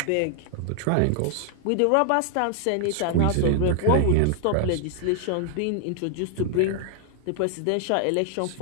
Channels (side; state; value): both; different; correlation 0.00